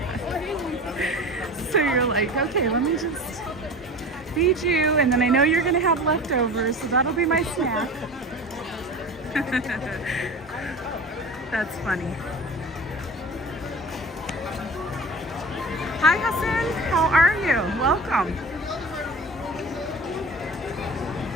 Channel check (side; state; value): both; normal; correlation 0.36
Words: So you're like, okay, let me just feed you, and then I know you're gonna have leftovers, so that'll be my snack. That's funny. Hi Hassan, how are you? Welcome.